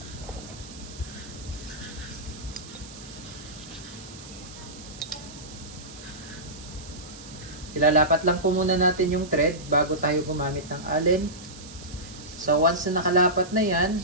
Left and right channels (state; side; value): noise; right; hiss, 16 dB below the sound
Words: Ilalapat lang po muna natin yung thread bago tayo gumamit ng Allen. So once na nakalapat na yan,